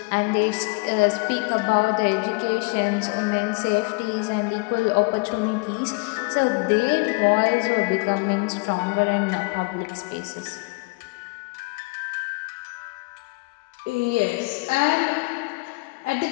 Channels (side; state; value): right; quieter; 28.1 dB